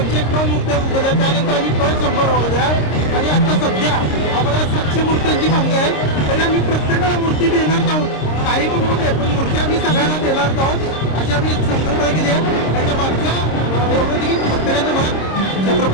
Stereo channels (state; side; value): late; right; 26 ms